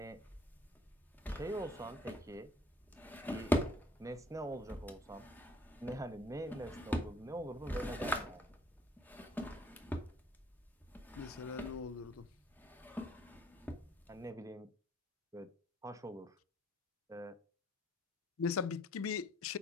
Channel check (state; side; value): normal; both; correlation 0.60